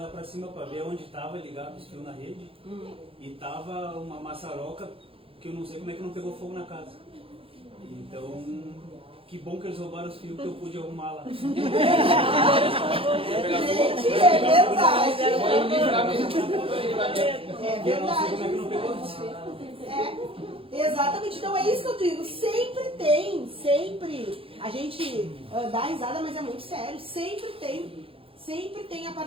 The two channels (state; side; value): late; left; 0.27 ms